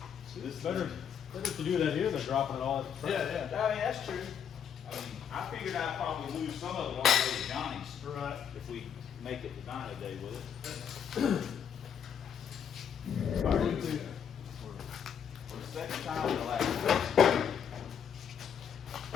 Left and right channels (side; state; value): right; quieter; 8.0 dB